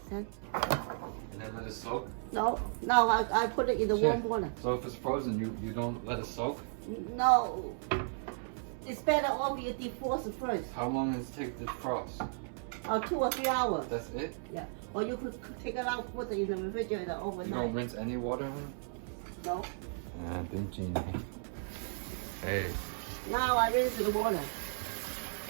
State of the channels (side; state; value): left; silent; 55 dB below the other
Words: And then let it soak? No, I put it in the warm water. So if it's frozen, you don't let it soak? No, it's better off you defrost first. How long does it take to frost? 2 or 3 hours. That's it? Yeah. Or you could take it out, put it in the refrigerator You don't overnight. rinse any water in it? No. Ah, didn't. Hey. Now I rinse the water.